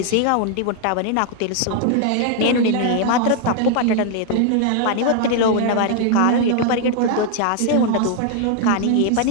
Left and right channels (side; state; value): both; different; correlation 0.00